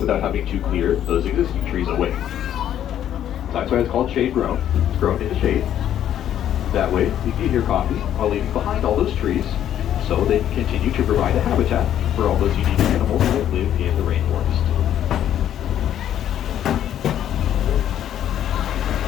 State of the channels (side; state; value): right; quieter; 10.7 dB